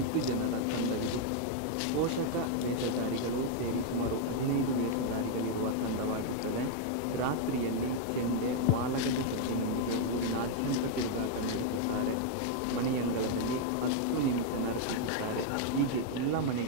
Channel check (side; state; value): both; different; correlation 0.00